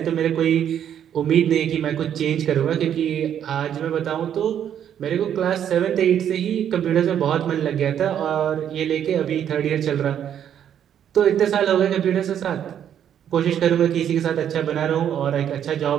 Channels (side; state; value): left; quieter; 9.5 dB